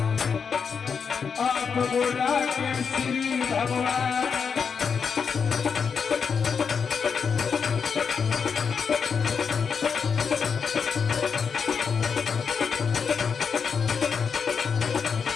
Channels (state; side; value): quieter; right; 6.2 dB